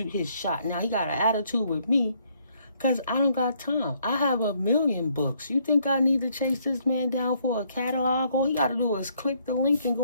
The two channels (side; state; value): both; inverted; correlation -0.69